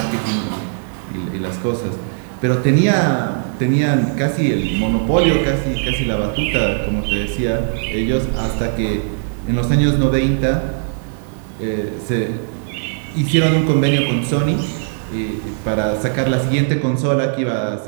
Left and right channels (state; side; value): silent; left; digital silence